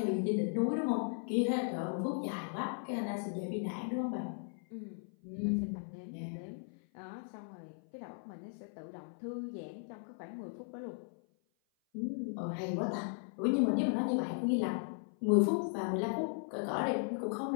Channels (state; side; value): silent; right; 53 dB below the other